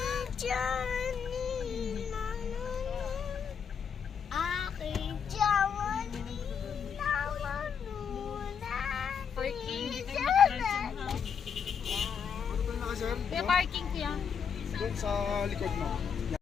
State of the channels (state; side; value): quieter; right; 7.0 dB